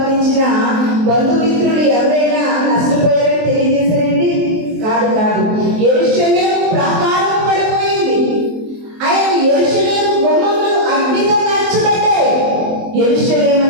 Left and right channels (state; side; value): late; left; 23 ms